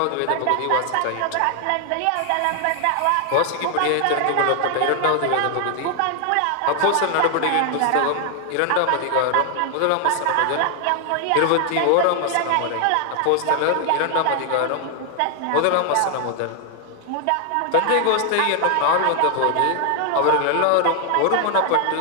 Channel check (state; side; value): different; both; correlation 0.00